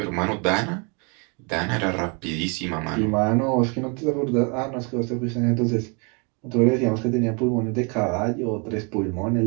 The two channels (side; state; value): left; quieter; 33.2 dB